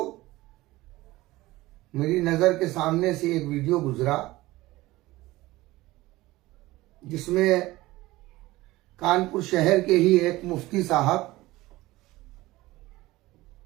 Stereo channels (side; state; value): left; quieter; 18.6 dB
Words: मेरी नजर के सामने से एक वीडियो गुजरा जिसमें कानपुर शहर के ही एक मुफ्ती साहब,